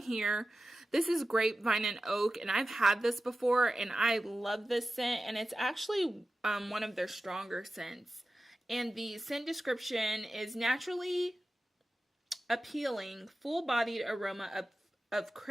This is grapevine and oak, and I've had this before, and I love this scent, and it's actually one of their stronger scents. And the scent description is naturally appealing, full-bodied aroma of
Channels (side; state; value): both; normal; correlation 0.94